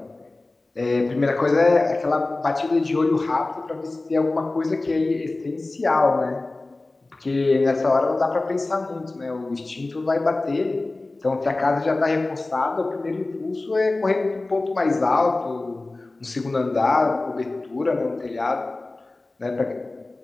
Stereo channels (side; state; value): right; quieter; 3.1 dB